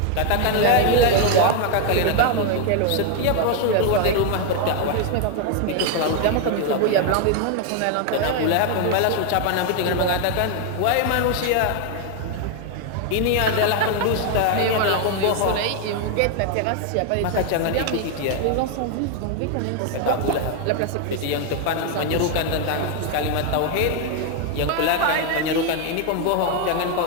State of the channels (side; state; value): both; different; correlation 0.01